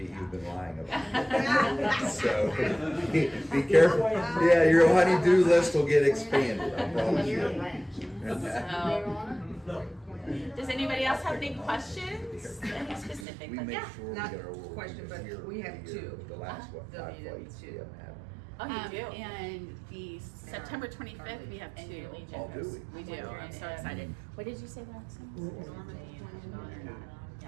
you've been lying about. So be careful. Yeah, your honey-do list will get expanded. I promise you. Does anybody else have any questions? Any specific? We Like, make yeah. sure we Not get our world question, but here we have the 2. The last what, 5 flights we W2. haven't had. Oh, you do? And the September 25th, we have 2. Oh, do we? We do. I'm so excited. What did you say last time?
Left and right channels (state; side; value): drops out; left; at 13.2 s